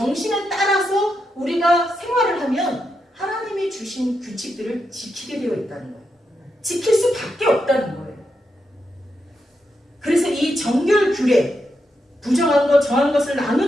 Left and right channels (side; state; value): both; normal; correlation 0.84